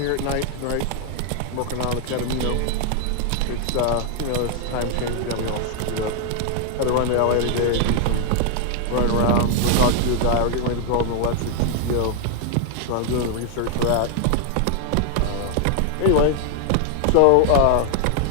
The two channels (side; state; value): both; different; correlation 0.00